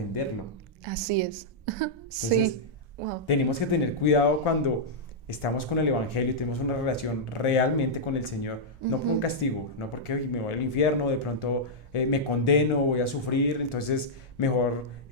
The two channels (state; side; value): normal; both; correlation -0.08